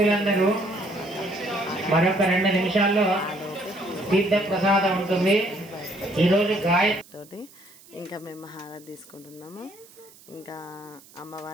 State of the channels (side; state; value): right; noise; hiss, 24 dB below the sound